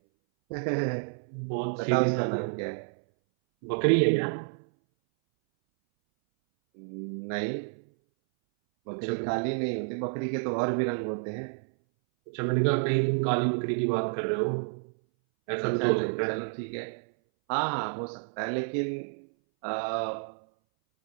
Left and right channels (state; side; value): silent; left; 58 dB below the other